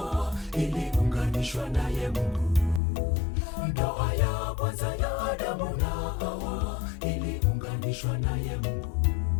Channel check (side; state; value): right; drops out; at 2.8 s